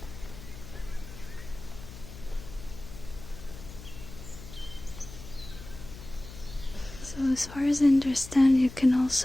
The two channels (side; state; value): left; noise; hum, 14 dB below the sound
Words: So as far as I understand, you can